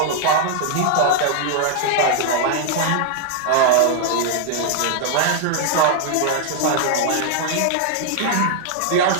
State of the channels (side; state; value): both; different; correlation -0.01